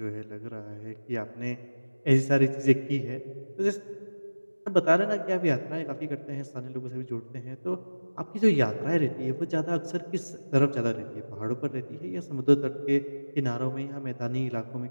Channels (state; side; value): inverted; both; correlation -1.00